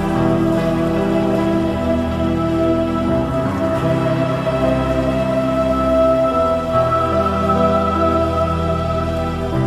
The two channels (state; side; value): identical; both; correlation 1.00